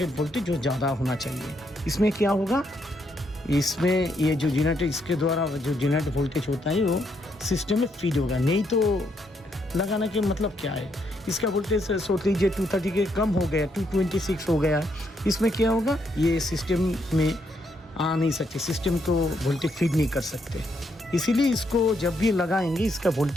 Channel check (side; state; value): both; normal; correlation 0.76